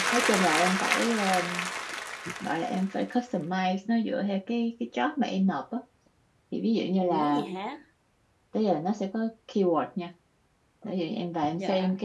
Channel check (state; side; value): identical; both; correlation 1.00